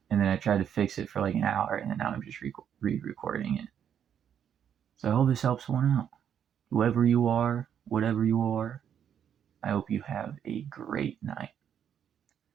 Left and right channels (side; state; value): left; quieter; 8.8 dB